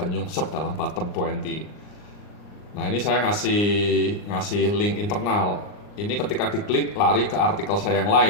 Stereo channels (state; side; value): late; right; 39 ms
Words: nyungsep dalam bottom 20. Nah, ini saya ngasih link internal. Ini ketika diklik lari ke artikel saya yang